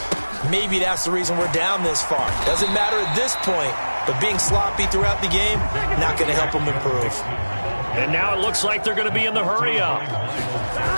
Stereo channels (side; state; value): both; inverted; correlation -1.00